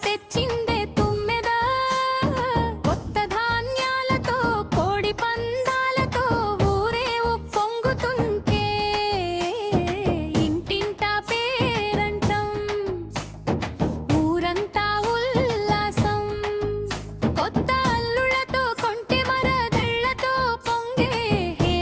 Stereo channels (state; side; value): identical; both; correlation 1.00